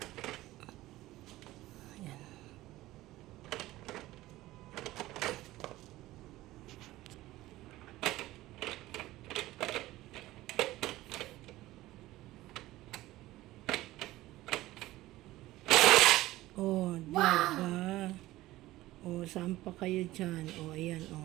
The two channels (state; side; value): quieter; left; 16.9 dB